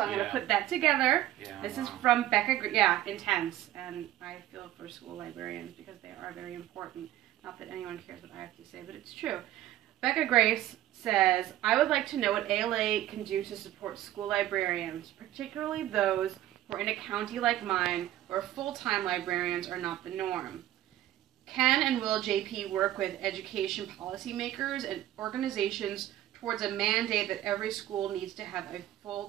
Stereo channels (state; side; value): quieter; left; 13.8 dB